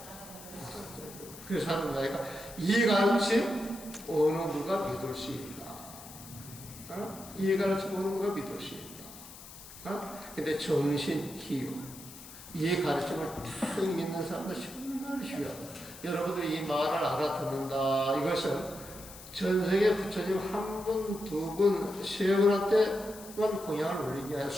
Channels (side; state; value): left; noise; hiss, 16 dB below the sound